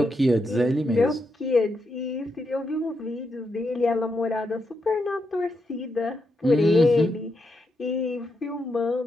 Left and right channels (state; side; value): normal; both; correlation 0.83